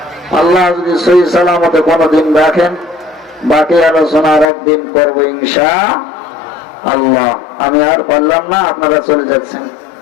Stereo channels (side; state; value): right; drops out; at 4.5 s